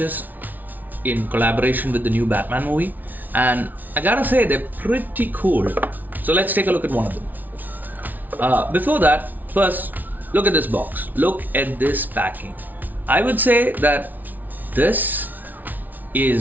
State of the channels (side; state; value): left; late; 0.081 ms